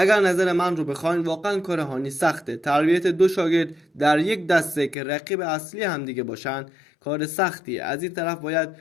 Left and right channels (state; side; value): drops out; right; at 5.0 s